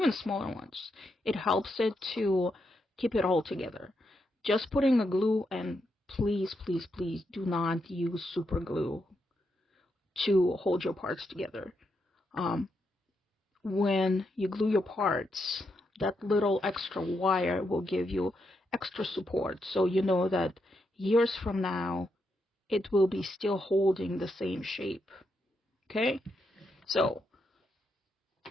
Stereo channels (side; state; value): both; normal; correlation 0.82